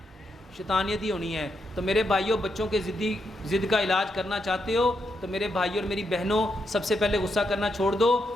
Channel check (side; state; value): both; normal; correlation 0.81